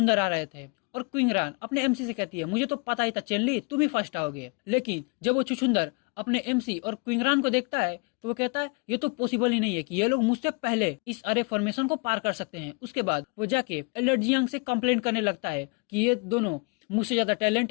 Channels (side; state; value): right; quieter; 31.5 dB